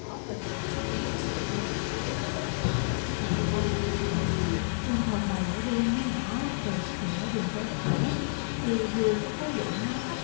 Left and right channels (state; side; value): silent; right; digital silence